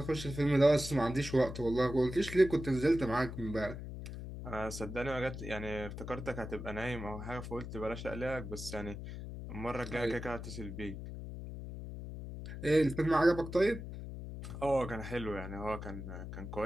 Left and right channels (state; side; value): noise; left; hum, 8 dB below the sound